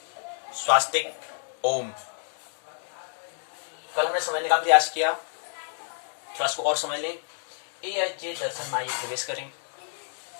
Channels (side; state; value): right; silent; digital silence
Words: स्वास्तिक ओम। कल हमने समझने का प्रयास किया, थोड़ा इसको और समझ लें। ए दर्शन माइए प्रवेश करें।